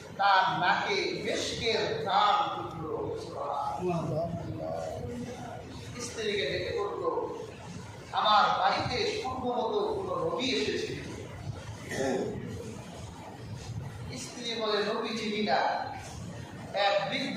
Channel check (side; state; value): both; identical; correlation 1.00